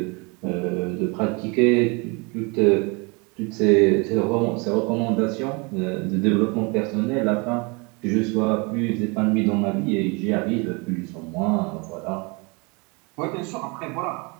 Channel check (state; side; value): quieter; left; 29.7 dB